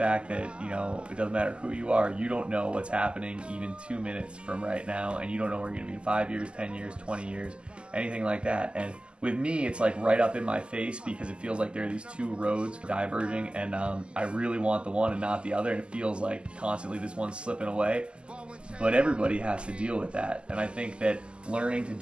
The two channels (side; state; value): left; late; 0.051 ms